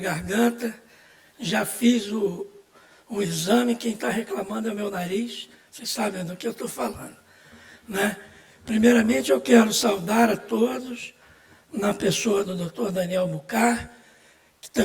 Já fiz o exame, quem está reclamando é o meu nariz. Vocês sabem do que eu estou falando, né? Primeiramente, eu quero saudar a todos, na pessoa do Dr. Daniel Bucar, que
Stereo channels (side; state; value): both; identical; correlation 1.00